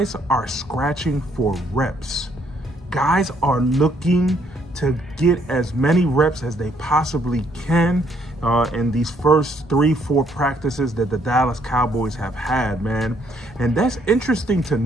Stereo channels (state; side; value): normal; both; correlation 0.69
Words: are scratching for reps. Guys are looking to get as many reps as they possibly can in these first 3-4 practices that the Dallas Cowboys have had, man. And that's interesting to